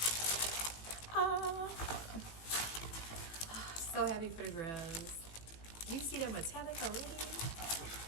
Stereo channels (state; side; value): late; right; 18 ms